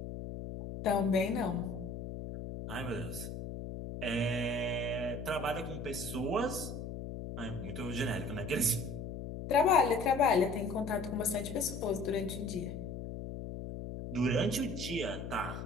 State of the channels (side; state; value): left; noise; hum, 7 dB below the sound